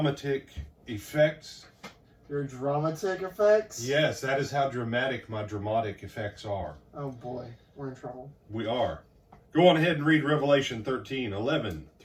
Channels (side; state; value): both; identical; correlation 1.00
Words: effects. Your dramatic effects? Yes, that is how dramatic my dramatic effects are. Oh boy, we're in trouble. We are. Go on ahead and read Revelation 13, 11